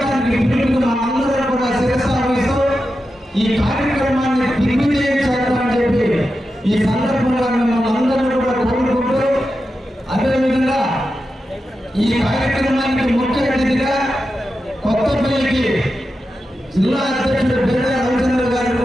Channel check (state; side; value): normal; both; correlation 0.90